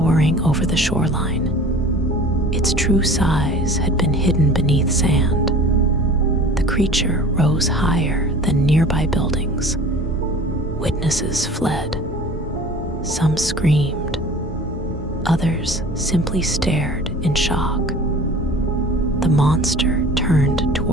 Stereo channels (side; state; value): both; normal; correlation 0.43